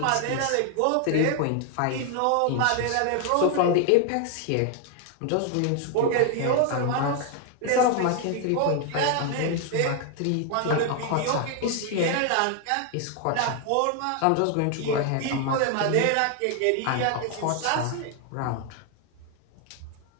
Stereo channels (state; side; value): different; both; correlation 0.01